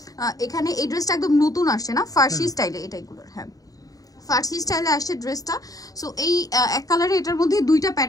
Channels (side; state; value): right; late; 0.18 ms